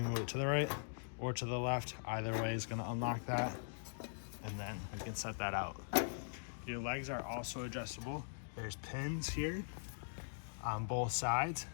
move it to the right or to the left. Either way is gonna unlock that, and then you can set that out. Your legs are also adjustable. There's pins here on both sides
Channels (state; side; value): silent; right; digital silence